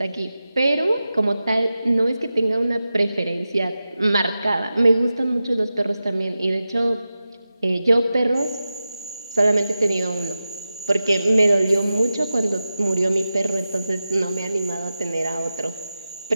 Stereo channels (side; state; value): both; inverted; correlation -0.93